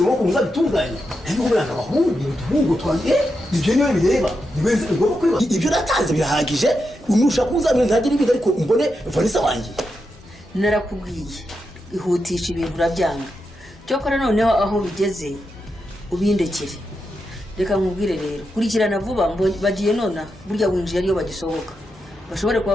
amaboko ngo uzabitunganye ariko umwana abahungu twanjye ibyo niwe bireba nibenze ngomba kwiba ibyo natanze birahagije unushaka uzamenya ntagire ibindi ariko mbone Vanessa wanjye narakubwiye ihutisha ibintu urabyanga cyokora noneho aho bigeze ubindekere reka nkubwire rero kurikirana vuba bagiye nona burya winjiye ariyo bagisohoka bashobore kuba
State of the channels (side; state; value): both; normal; correlation 0.86